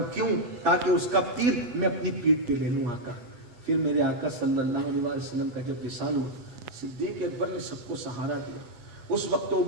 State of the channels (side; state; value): left; late; 8.2 ms